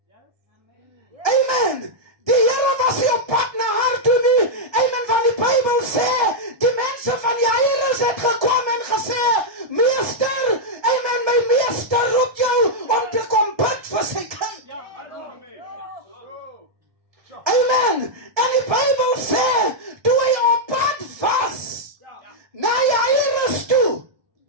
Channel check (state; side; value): late; left; 1.7 ms